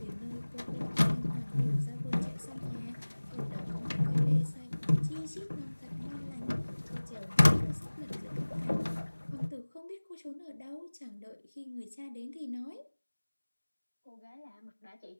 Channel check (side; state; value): both; inverted; correlation -1.00